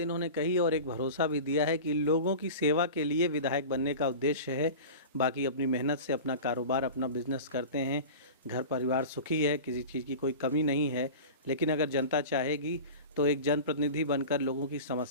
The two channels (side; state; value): both; inverted; correlation -0.33